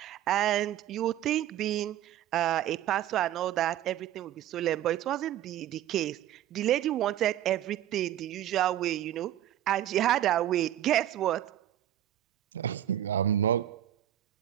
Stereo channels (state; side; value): quieter; left; 12.1 dB